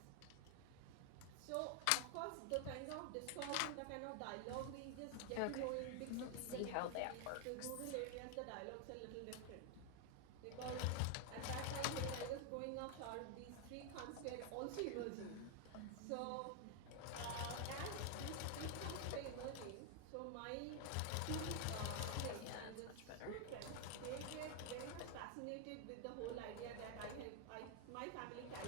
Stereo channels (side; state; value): both; different; correlation 0.00